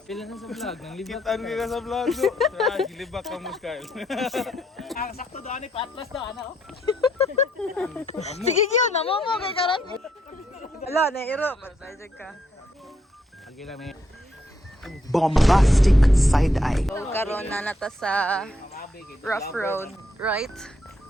Pila na sa vlog, nang libak. Kitaan ka sa vlog do. Gilibak ka mo, Kyle. Ang sakto doon ni Patlas daw, ano? Sige yun, namo mo kay karon. Ala, nairo. Patay ka. Lagi lang may Bombastic side eye. So, karon na nata sa rough road, right?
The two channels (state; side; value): normal; both; correlation 0.75